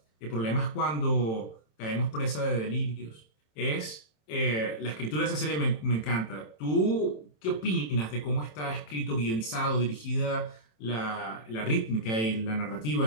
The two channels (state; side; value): late; right; 27 ms